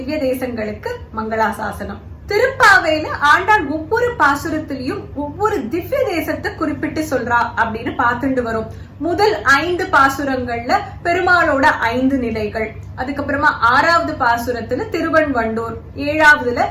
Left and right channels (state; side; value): identical; both; correlation 1.00